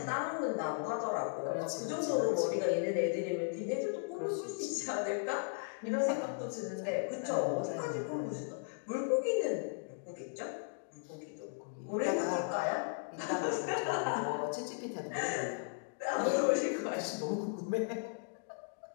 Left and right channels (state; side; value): silent; right; digital silence